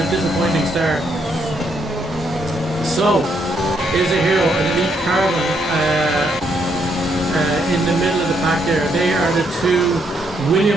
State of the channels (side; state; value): both; normal; correlation 0.75